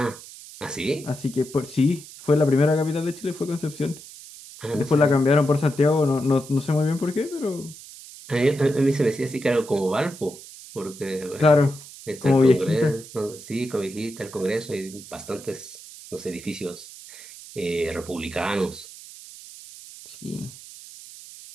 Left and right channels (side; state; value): right; noise; hiss, 16 dB below the sound